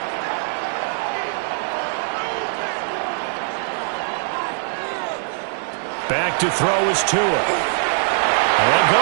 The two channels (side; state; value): left; silent; digital silence